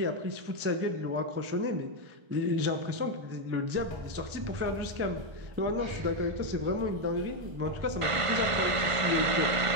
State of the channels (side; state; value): left; late; 1.5 ms